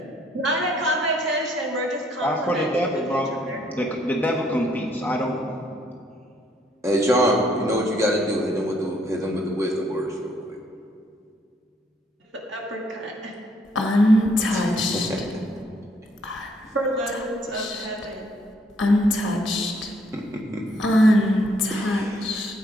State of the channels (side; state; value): both; normal; correlation 0.67